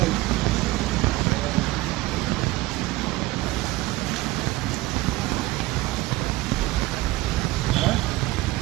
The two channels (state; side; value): quieter; left; 18.5 dB